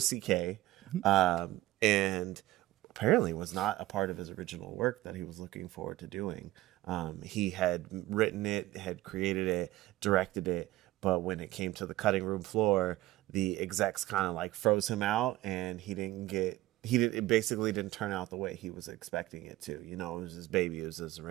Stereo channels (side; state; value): left; quieter; 16.7 dB